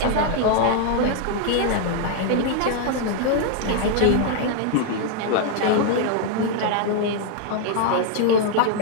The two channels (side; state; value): both; different; correlation 0.00